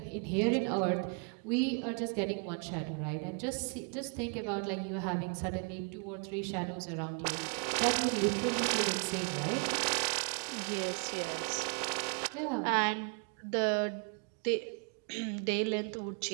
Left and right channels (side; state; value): left; quieter; 38.8 dB